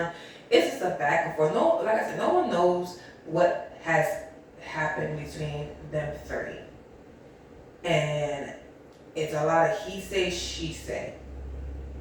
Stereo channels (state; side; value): identical; both; correlation 1.00